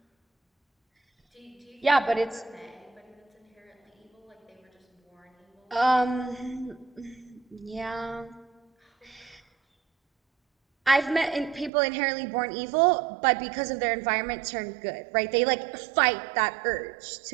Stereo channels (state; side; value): drops out; left; at 11.7 s